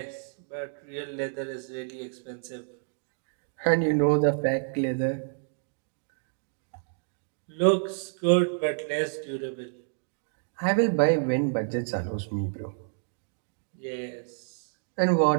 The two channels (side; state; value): left; silent; digital silence